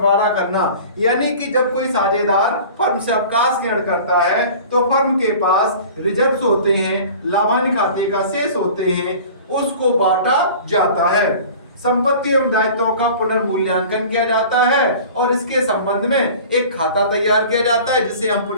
करना, यानी कि जब कोई साझेदार फर्म से अवकाश ग्रहण करता है तो फर्म के पास रिजर्व्स होते हैं, लाभ हानि खाते का शेष होते हैं, उसको बांटा जाता है। संपत्ति एवं दायित्वों का पुनर्मूल्यांकन किया जाता है और इसके संबंध में एक खाता तैयार किया जाता है जिसे हम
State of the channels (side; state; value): both; inverted; correlation -0.42